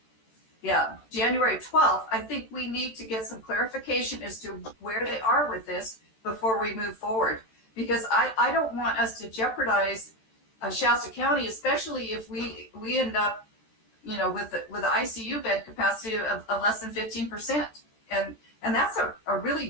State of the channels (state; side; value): late; right; 14 ms